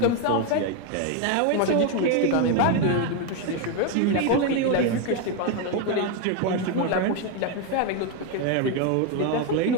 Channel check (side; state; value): both; different; correlation 0.02